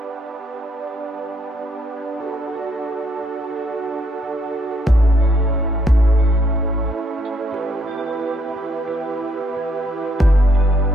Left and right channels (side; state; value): both; normal; correlation 0.71